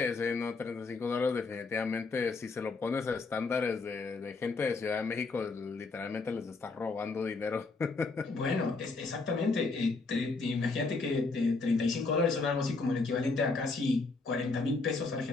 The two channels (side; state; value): right; quieter; 3.9 dB